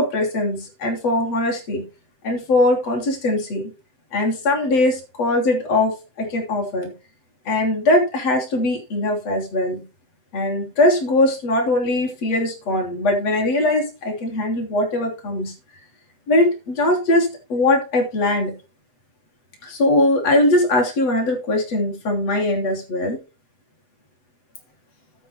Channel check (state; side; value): late; right; 7.8 ms